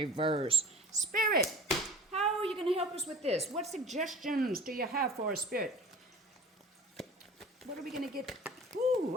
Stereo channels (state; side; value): normal; both; correlation 0.43